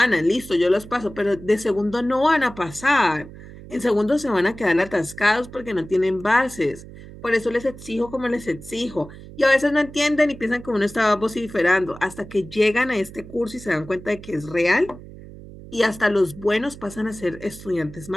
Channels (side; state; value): right; noise; hum, 16 dB below the sound